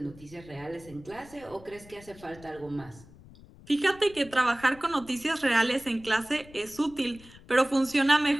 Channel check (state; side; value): noise; left; rumble, 21 dB below the sound